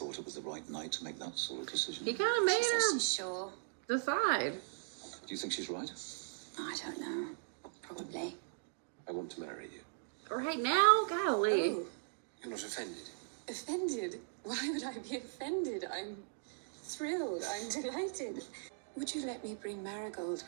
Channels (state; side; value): silent; left; digital silence